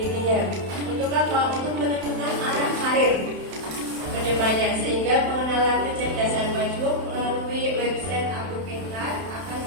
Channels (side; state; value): left; late; 31 ms